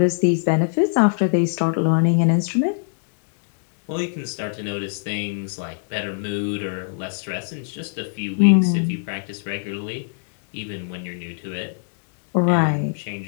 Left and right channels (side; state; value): right; silent; digital silence